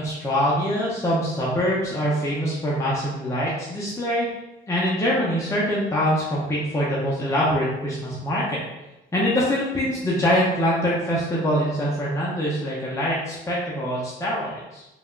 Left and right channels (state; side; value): normal; both; correlation 0.49